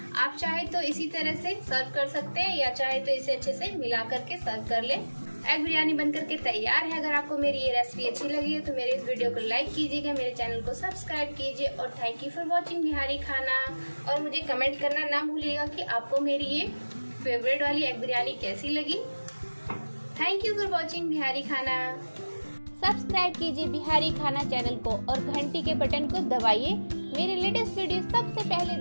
आप चाहे तो इसी तरह से सर्व कर सकते हैं या चाहे तो इसे अच्छे से मिला करके सर्व कर लें। एग बिरयानी बनकर के तैयार है। अगर आपको मेरी ये रेसिपी अच्छी लगी है तो मेरे इस वीडियो को लाइक कीजिएगा, मेरे चैनल को सब्सक्राइब कीजिए और thank you for watching Bihari खाना। और मुझे कमेंट करना ना भूलिएगा कि आपको मेरी ये फेवरेट वाली एग बिरयानी कैसी लगी। Thank you for watching Bihari खाना। सब्सक्राइब कीजिए बिहारी खाना चैनल को और घंटी के बटन को दबाइए मेरे लेटेस्ट वीडियो सबसे पहले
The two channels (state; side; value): inverted; both; correlation -1.00